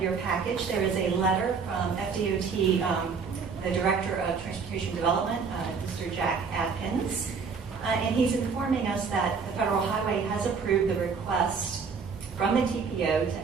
your package, there is a letter from FDOT, the Director of Transportation Development, Mr. Jack Adkins, and he's informing us that the Federal Highway has approved the request from the TPO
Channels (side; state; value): left; quieter; 5.4 dB